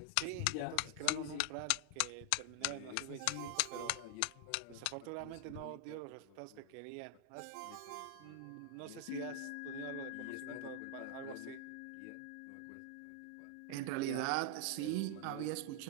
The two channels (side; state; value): both; different; correlation 0.00